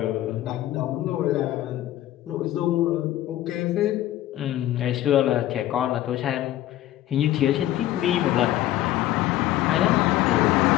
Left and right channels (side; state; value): right; quieter; 14.0 dB